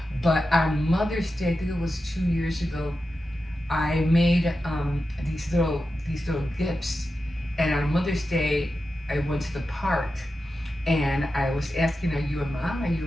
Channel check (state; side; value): normal; both; correlation 0.91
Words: But on Mother's Day, I think it was 2 years ago, I made these little gifts. And on Mother's Day, I went to the park and I was asking, "Are you a mom? Are